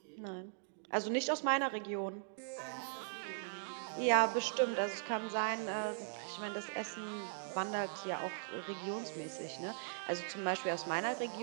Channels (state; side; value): silent; left; digital silence